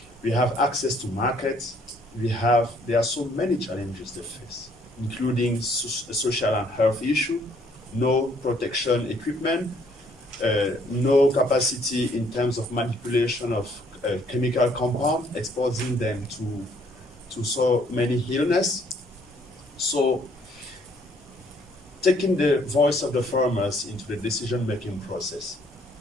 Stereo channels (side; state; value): both; normal; correlation 0.64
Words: We have access to markets. There are so many challenges they face, including social and health issue, no protection equipment, no capacity in terms of manipulation of chemical compound, exposing them to so many illness. So taking the voice of the farmers into the decision-making process